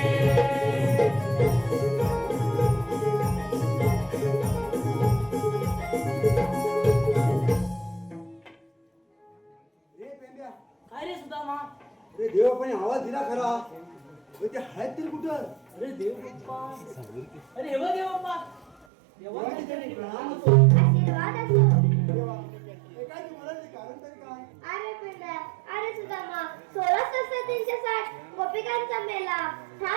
काय रे सुदामा? अरे देवापणे आवाज दिला खरा पण ते आहेत तरी कुठं अरे देव बाप्पा, अरे हे बघ देव बाप्पा, देवाने तरी प्रणाम होतो. आशीर्वाद असो. देवा हे काय तू म्हणाल कारण तरी काय अरे पिंड्या, अरे सुदामा, 16,360 गोपिकांचा मेला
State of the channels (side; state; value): left; drops out; at 18.9 s